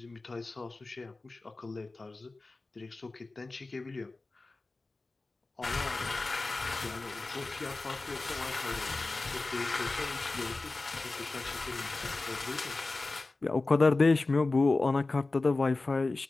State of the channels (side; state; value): right; quieter; 3.3 dB